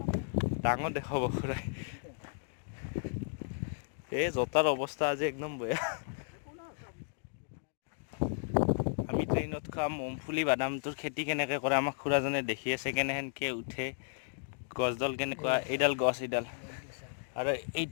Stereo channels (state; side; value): silent; right; digital silence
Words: ডাঙৰ দেখাব খুৰাই। এই জোতাৰ অৱস্থা আজি একদম বেয়া। আমি ট্ৰেইনত খাম মুংফুলি বাদামটোৰ খেতি কেনেকৈ কৰে আমাক খুৰাজনে দেখি আছে, কেনেকৈ উঠে, গছডাল কেনেকুৱা, এইডাল গছ এইডাল, আৰু